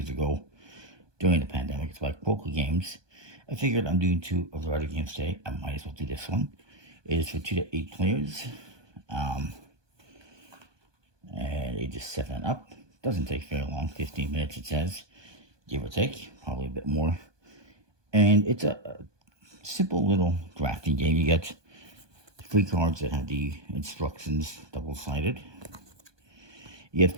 ago during the pandemic. It's like poker games. I figured I'm doing 2 of the other games today. I might as well do this one. It is for 2 to 8 players. And ages 7 and up. Doesn't take very long, 15 minutes it says, give or take, probably a bit more. And it's a simple little drafting game. You get 3 cards that have the instructions double-sided. You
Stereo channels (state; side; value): late; left; 1.2 ms